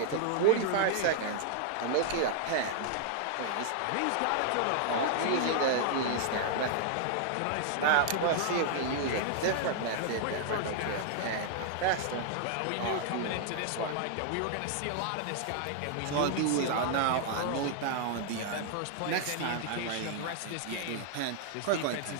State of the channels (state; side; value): different; both; correlation -0.01